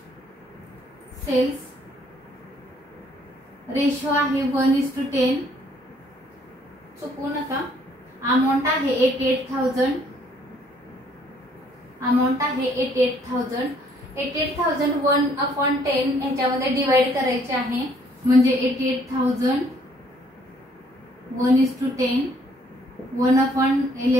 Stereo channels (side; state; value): both; normal; correlation 0.64